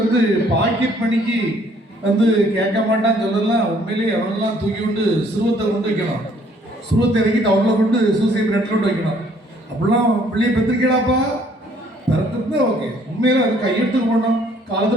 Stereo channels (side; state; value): both; normal; correlation 0.62